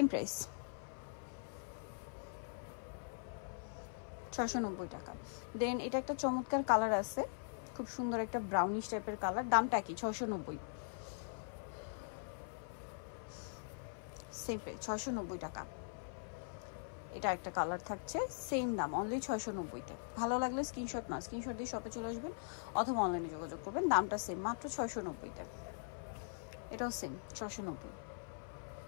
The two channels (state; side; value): silent; right; 50 dB below the other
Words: প্রাইস 690 টাকা। দেন এটা একটা চমৎকার কালার আছে, খুব সুন্দর একটা ব্রাউনিশ টাইপের কালার, দামটা কি 690, সেম প্রাইস 690 টাকা। এটা একটা কালার থাকছে, সেম দাম অনলি 690-তে। ভালো লাগলে স্ক্রিনশট দিয়ে শপে চলে আসবেন অথবা অনলাইনে যোগাযোগ করবেন। দামটা সেম, মাত্র 690-তে। এটাও সেম 690।